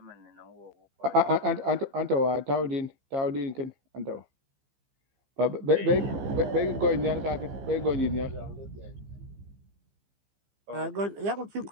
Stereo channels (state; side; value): late; left; 15 ms